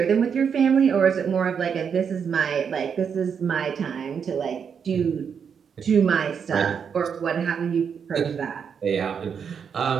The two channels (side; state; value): left; quieter; 6.9 dB